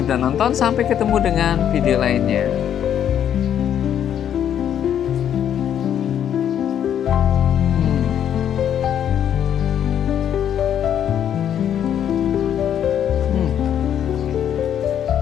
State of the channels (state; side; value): quieter; right; 9.6 dB